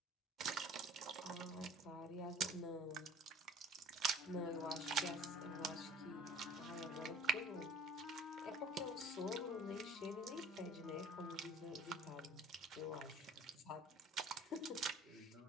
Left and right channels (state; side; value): normal; both; correlation 0.48